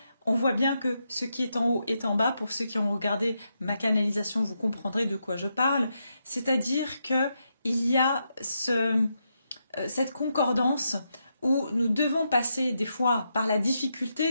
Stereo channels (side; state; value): both; inverted; correlation -0.83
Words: on voit bien que ce qui est en haut est en bas. Pour ceux qui ont regardé ma canalisation, vous comprendrez de quoi je parle. C'est-à-dire qu'il y a cette concordance où nous devons passer des fois par la